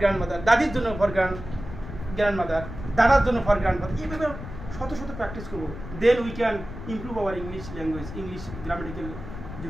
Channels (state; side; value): noise; left; rumble, 11 dB below the sound